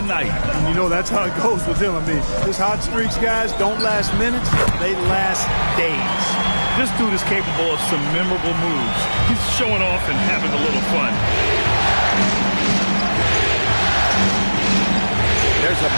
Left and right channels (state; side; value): inverted; both; correlation -1.00